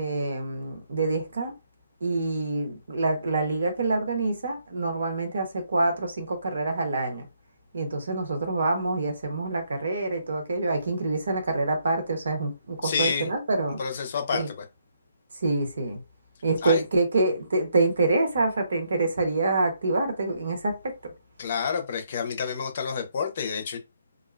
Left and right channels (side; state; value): both; inverted; correlation -0.73